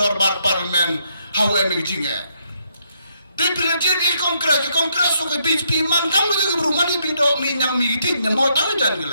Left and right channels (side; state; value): both; inverted; correlation -0.75